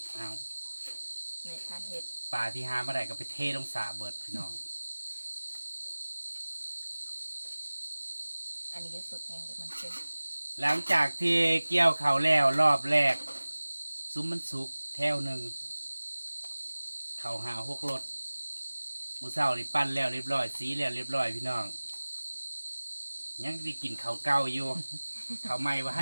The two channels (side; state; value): both; inverted; correlation -1.00